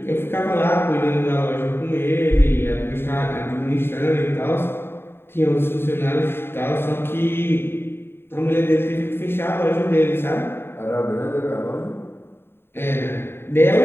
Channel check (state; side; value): late; right; 0.11 ms